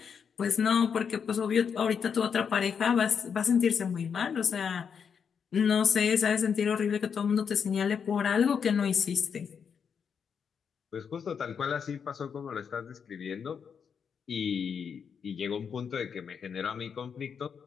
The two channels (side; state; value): right; quieter; 6.8 dB